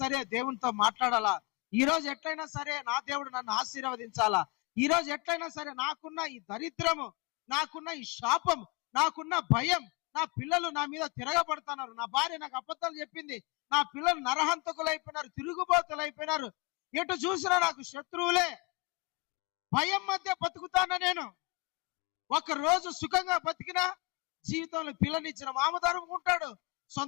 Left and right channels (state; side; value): quieter; right; 27.3 dB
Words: సరే దేవునితో మాట్లాడాలా, ఈ రోజు ఎట్లయినా సరే నా దేవుడు నన్ను ఆశీర్వదించాలా, ఈ రోజు ఎట్లయినా సరే నాకున్న ఈ దరిద్రము, నాకున్న ఈ శాపం, నాకున్న భయం, నా పిల్లలు నా మీద తిరగబడుతున్నారు, నా భార్య నాకు అబద్ధాలు చెప్పింది, నా పిల్లలు నరహంతకులు అయిపోయినారు, తిరుగుబోతులు అయిపోయినారు, ఎటు చూసినా నాకు శత్రువులే, భయం మధ్య బతుకుతానా నేను. ఒక రోజు సుఖంగా బతికినా జీవితంలో పిల్లనిచ్చిన మామ ధరుముకుంటాడు,